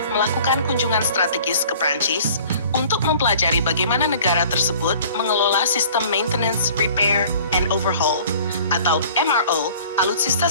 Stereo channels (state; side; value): inverted; both; correlation -0.49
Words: melakukan kunjungan strategis ke Prancis untuk mempelajari bagaimana negara tersebut mengelola sistem maintenance, repair, and overhaul atau MRO alutsista